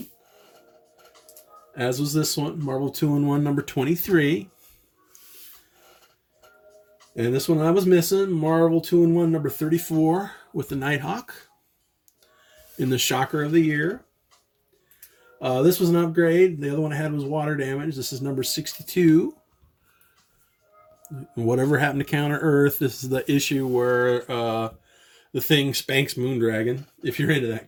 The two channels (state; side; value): identical; both; correlation 1.00